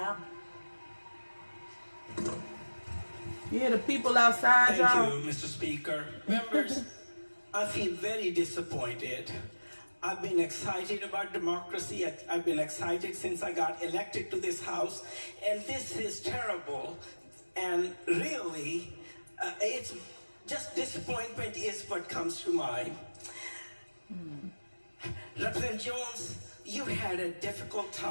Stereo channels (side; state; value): both; inverted; correlation -1.00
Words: Yeah, the people outside, y'all. Thank you, Mr. Speaker. Members, I feel very disappointed. I've been excited about democracy. I've been excited since I got elected to this House. And this is terrible. And really, it's just disappointment is what comes to mind. Representative Jones, you had a difficult